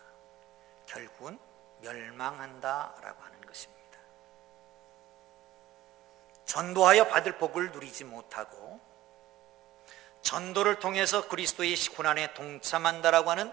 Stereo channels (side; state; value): left; quieter; 15.0 dB